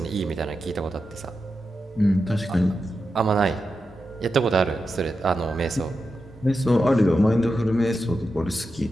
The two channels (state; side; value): normal; both; correlation 0.89